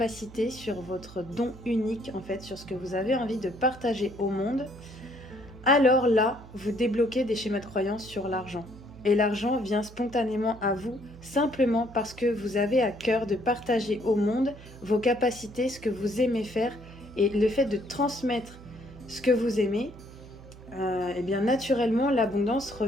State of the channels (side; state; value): right; noise; hum, 18 dB below the sound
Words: sur votre don unique, en fait, sur ce que vous avez envie de partager au monde, alors là, vous débloquez des schémas de croyance sur l'argent. Et l'argent vient spontanément à vous, simplement parce que vous avez à cœur de partager au monde vos capacités, ce que vous aimez faire, et le fait de transmettre ce que vous aimez, et bien naturellement, l'abondance